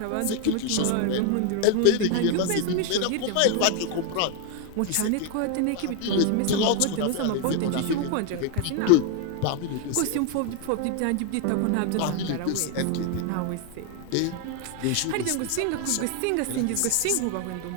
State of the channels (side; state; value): both; different; correlation 0.01